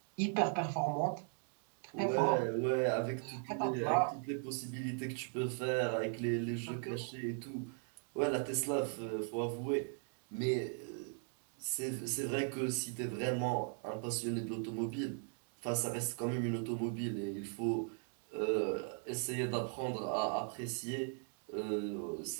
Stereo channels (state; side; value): silent; left; 52 dB below the other